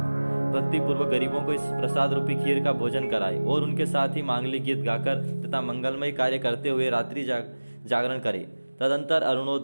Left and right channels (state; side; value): inverted; both; correlation -1.00